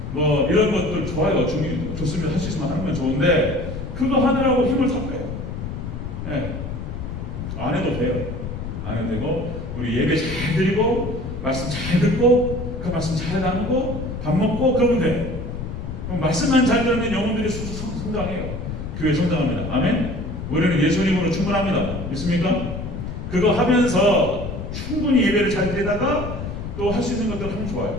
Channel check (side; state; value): left; noise; rumble, 6 dB below the sound